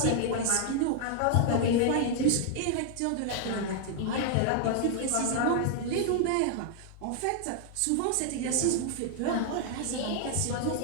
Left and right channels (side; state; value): both; different; correlation 0.00